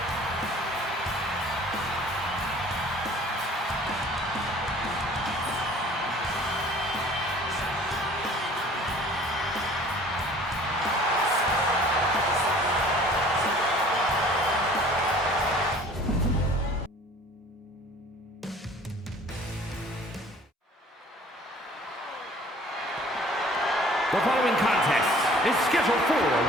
The following contest is scheduled for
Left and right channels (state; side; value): normal; both; correlation 0.50